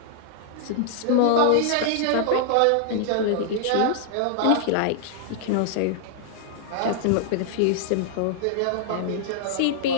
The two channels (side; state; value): both; different; correlation -0.01